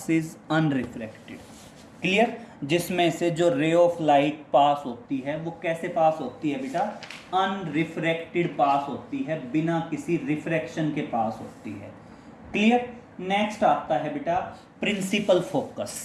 unrefracted। Clear? जिसमें से जो ray of light pass होती है वो कैसे पास होती है बेटा, अनरिफ्रैक्टेड पास होती है, बिना किसी रिफ्रैक्शन के पास होती है। क्लियर? नेक्स्ट आता है बेटा प्रिंसिपल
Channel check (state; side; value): identical; both; correlation 1.00